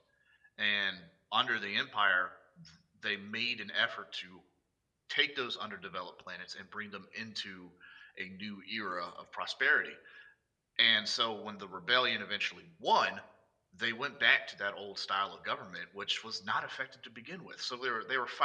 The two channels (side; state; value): both; identical; correlation 1.00